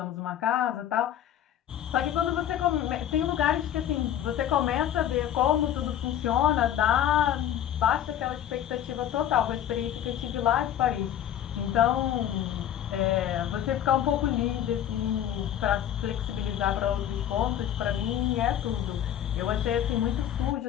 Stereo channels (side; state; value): right; quieter; 10.8 dB